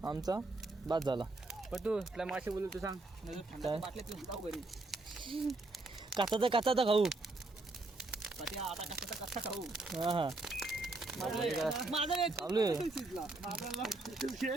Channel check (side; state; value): left; quieter; 3.1 dB